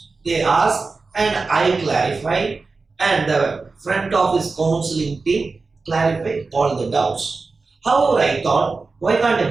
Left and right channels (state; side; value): quieter; left; 4.1 dB